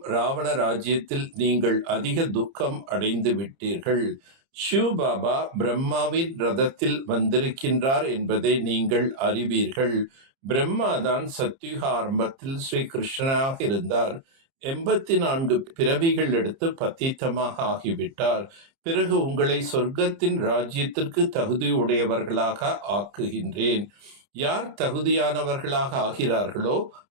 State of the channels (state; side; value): late; left; 30 ms